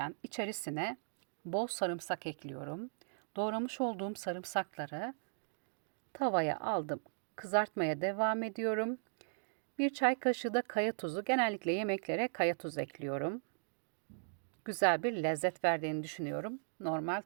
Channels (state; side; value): silent; left; digital silence